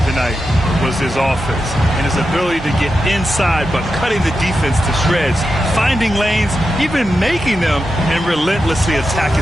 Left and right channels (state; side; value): normal; both; correlation 0.89